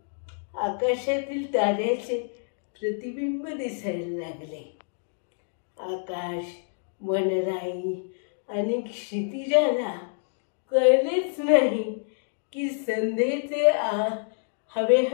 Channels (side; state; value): right; silent; digital silence